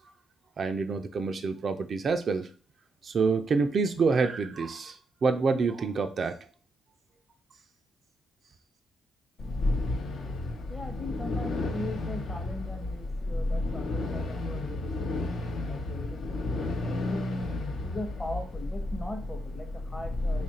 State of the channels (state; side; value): normal; both; correlation 0.80